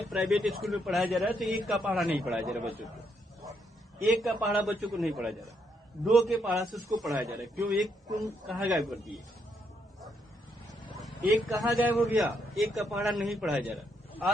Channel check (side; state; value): both; normal; correlation 0.76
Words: प्राइवेट स्कूल में पढ़ाया जा रहा है तो 1 का पहाड़ा नहीं पढ़ाया जा रहा बच्चों को। 1 का पहाड़ा बच्चों को नहीं पढ़ाया जा रहा, 2 के पहाड़ा से उसको पढ़ाया जा रहा है। क्यों? 1 तुम कहाँ गायब कर दिए? 1 कहाँ गायब हो गया? 1 का पहाड़ा नहीं पढ़ाया जा रहा।